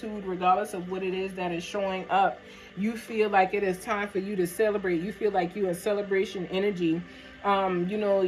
regardless of what it is that is showing up. You feel like it is time for you to celebrate. You feel like you're in celebration energy.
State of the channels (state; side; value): identical; both; correlation 1.00